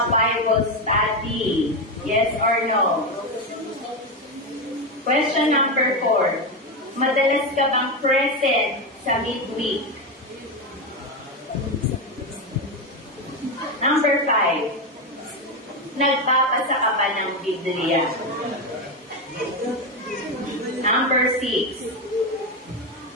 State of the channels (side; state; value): both; normal; correlation 0.12